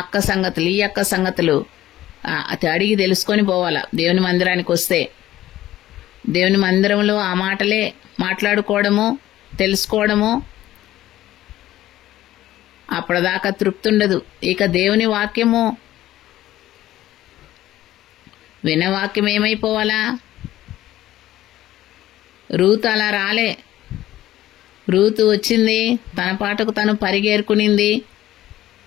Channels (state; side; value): quieter; right; 14.3 dB